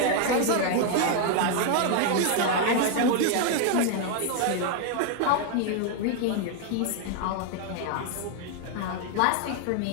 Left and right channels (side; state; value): both; different; correlation 0.00